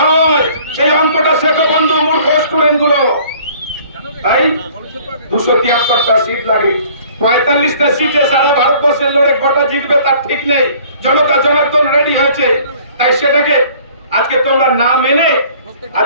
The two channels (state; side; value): inverted; both; correlation -0.53